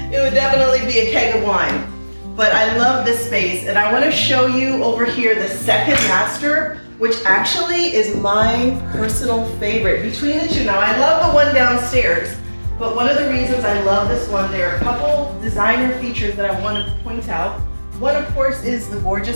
It would definitely be a keg of wine. But I love this space, and I want to show you over here the second master, which actually is my personal favorite between the two. Now I love the one downstairs, but one of the reasons I love this one, there are a couple designer features that I want to point out. One, of course, is the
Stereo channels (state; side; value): inverted; both; correlation -1.00